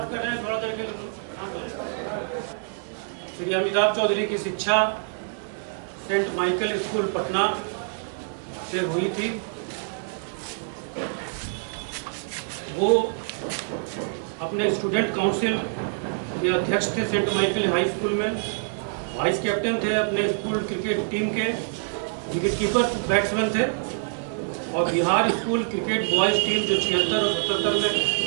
कर रहे हैं थोड़ा देर के। श्री अमिताभ चौधरी की शिक्षा सेंट माइकल स्कूल पटना से हुई थी। वो अपने स्टूडेंट काउंसिल के अध्यक्ष थे सेंट माइकल हाई स्कूल में। वाइस कैप्टन थे अपने स्कूल क्रिकेट टीम के। विकेटकीपर बैट्समैन थे और Bihar school cricket boys team जो 76 और 77 में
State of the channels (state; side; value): silent; left; digital silence